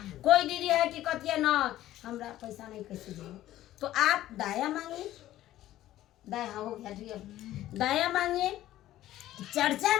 कोई दीदी है कि कहती है ना हमरा पैसा नहीं कैसे देंगे, तो आप दया मांगिए। दया हो गया ठीक है, दया मांगिए। चर्चा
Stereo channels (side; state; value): right; quieter; 14.1 dB